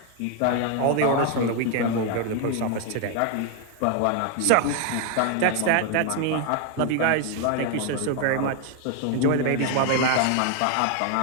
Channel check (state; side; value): different; both; correlation 0.01